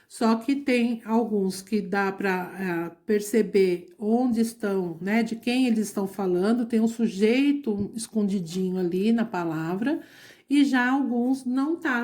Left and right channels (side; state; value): both; identical; correlation 1.00